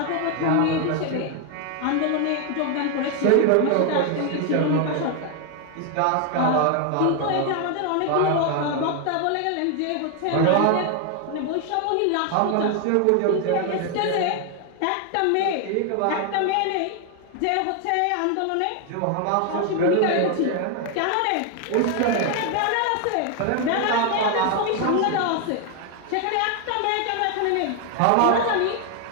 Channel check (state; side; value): different; both; correlation 0.01